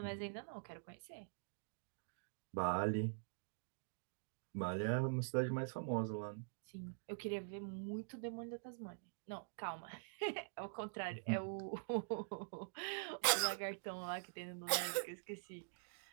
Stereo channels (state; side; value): silent; left; digital silence